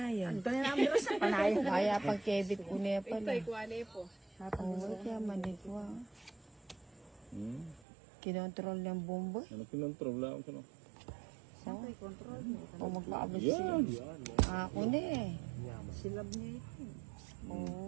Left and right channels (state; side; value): drops out; left; at 7.9 s